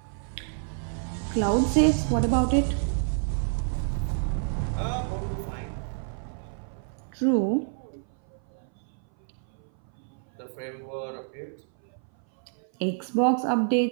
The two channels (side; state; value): left; silent; 58 dB below the other